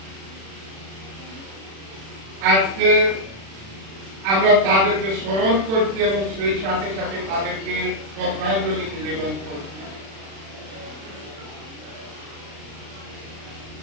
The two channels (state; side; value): late; left; 36 ms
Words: আজকে আমরা তাদেরকে স্মরণ করছি এবং সেই সাথে সাথে তাদেরকে শ্রদ্ধাঞ্জলি নিবেদন করছি।